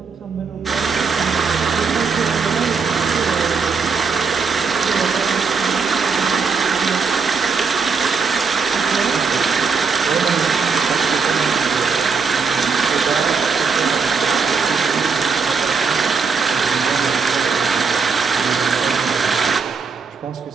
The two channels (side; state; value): left; quieter; 5.1 dB